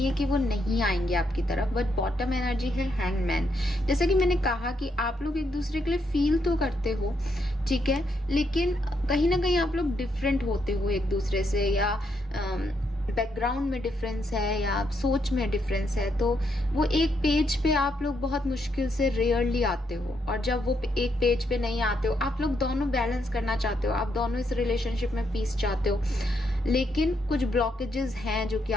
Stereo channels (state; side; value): normal; both; correlation 0.77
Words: है कि वो नहीं आएंगे आपकी तरफ, बट बॉटम एनर्जी है हैंगमैन। जैसा कि मैंने कहा कि आप लोग एक दूसरे के लिए फील तो करते हो, ठीक है, लेकिन कहीं ना कहीं आप लोग डिफरेंट होते हो एक दूसरे से, या बैकग्राउंड में डिफरेंस है या सोच में डिफरेंस है, तो वो एक पेज पे आप लोग बहुत मुश्किल से रेयरली आते हो। और जब वो एक पेज पे नहीं आते हो, आप लोग दोनों बैलेंस करना चाहते हो, आप दोनों इस रिलेशनशिप में पीस चाहते हो, लेकिन कुछ ब्लॉकेजेस हैं जो कि